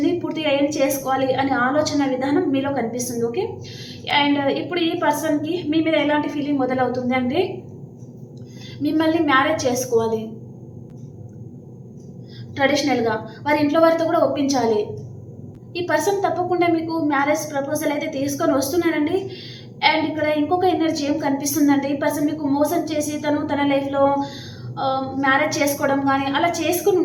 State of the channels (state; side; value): identical; both; correlation 1.00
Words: పూర్తిగా ఏం చేసుకోవాలి అనే ఆలోచన విధానం మీలో కనిపిస్తుంది. ఓకే, అండ్ ఇప్పుడు ఈ పర్సన్కి మీ మీద ఎలాంటి ఫీలింగ్ మొదలవుతుంది అంటే మిమ్మల్ని మ్యారేజ్ చేసుకోవాలి, ట్రెడిషనల్గా వారి ఇంట్లో వారితో కూడా ఒప్పించాలి. ఈ పర్సన్ తప్పకుండా మీకు మ్యారేజ్ ప్రపోజల్ అయితే తీసుకొని వస్తున్నారండి. అండ్ ఇక్కడ ఇంకొక ఎనర్జీ ఏం కనిపిస్తుందంటే ఈ పర్సన్ మీకు మోసం చేసి తన లైఫ్లో మ్యారేజ్ చేసుకోవడం కానీ అలా చేసుకుని